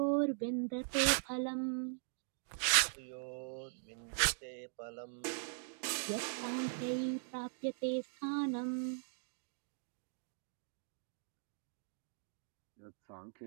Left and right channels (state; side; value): silent; left; digital silence